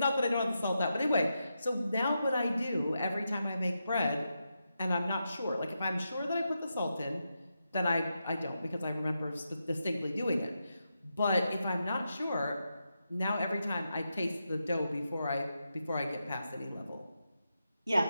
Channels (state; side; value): inverted; both; correlation -0.87